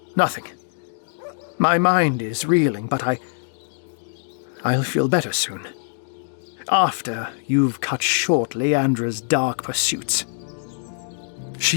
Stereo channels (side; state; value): right; silent; digital silence